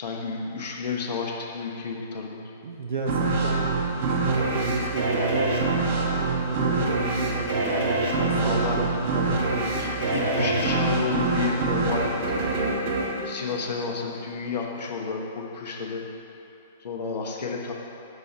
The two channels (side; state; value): both; inverted; correlation -0.42